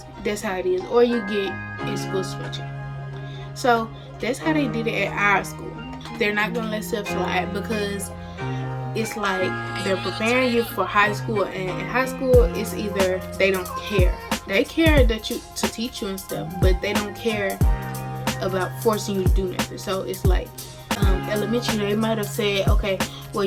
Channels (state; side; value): identical; both; correlation 1.00